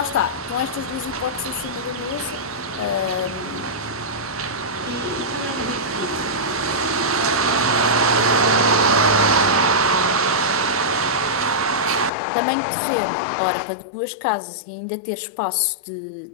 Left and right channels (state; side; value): drops out; right; at 12.1 s